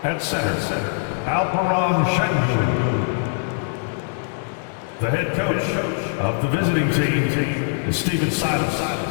At center, Alperon Şengün. The head coach of the visiting team is Stephen Silas.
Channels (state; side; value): silent; right; digital silence